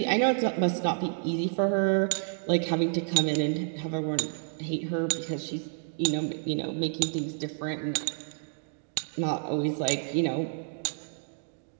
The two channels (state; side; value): silent; left; digital silence